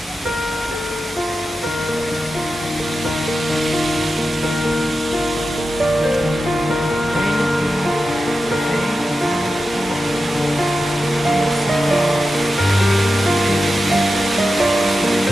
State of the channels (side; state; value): both; normal; correlation 0.91